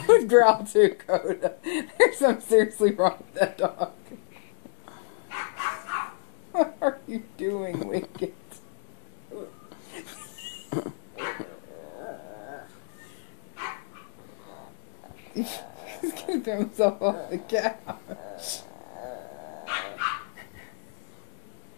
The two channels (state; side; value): silent; right; digital silence